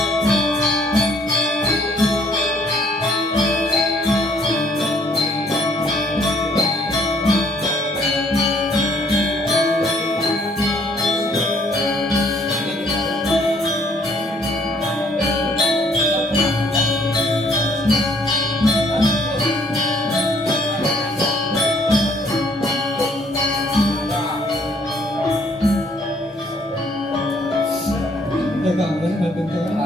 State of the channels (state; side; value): normal; both; correlation 0.64